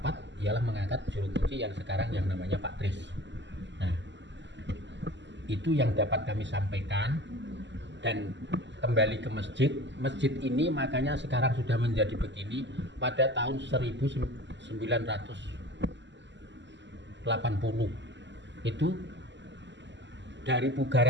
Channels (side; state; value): left; late; 0.53 ms